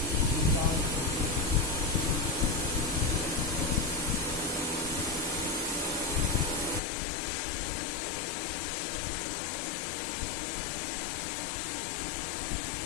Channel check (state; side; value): drops out; right; at 6.8 s